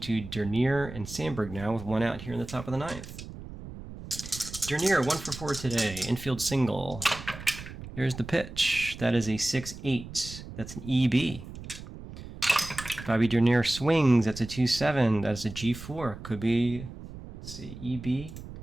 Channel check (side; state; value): right; noise; rumble, 13 dB below the sound